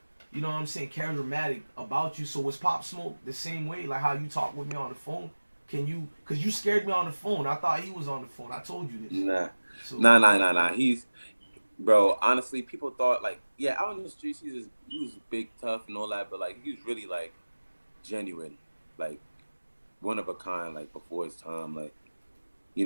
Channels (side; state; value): both; inverted; correlation -1.00